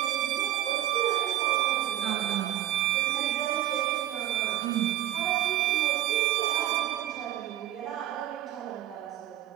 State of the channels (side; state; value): left; quieter; 12.3 dB